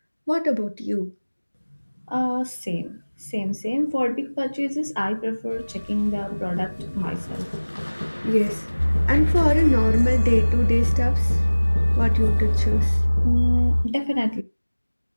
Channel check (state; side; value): inverted; both; correlation -1.00